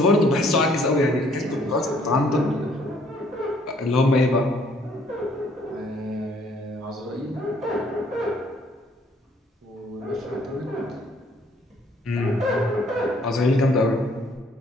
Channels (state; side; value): normal; both; correlation 0.63